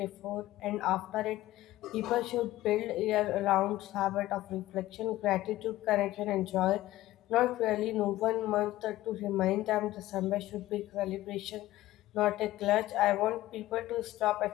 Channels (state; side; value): quieter; right; 16.0 dB